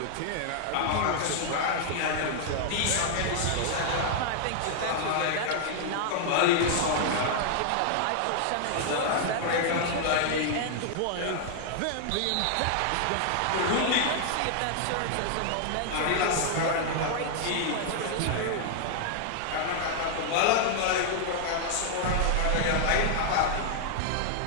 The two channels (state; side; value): different; both; correlation -0.01